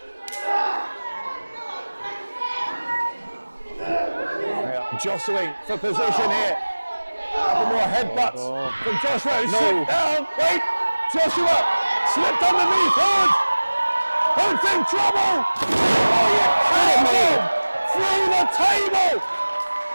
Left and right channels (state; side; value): inverted; both; correlation -1.00